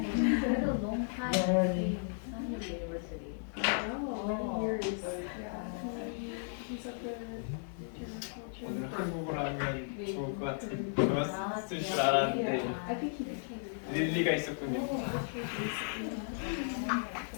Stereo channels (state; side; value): silent; right; digital silence